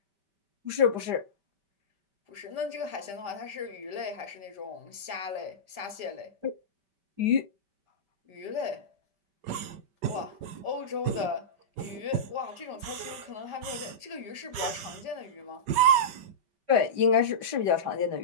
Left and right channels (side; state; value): left; late; 5.2 ms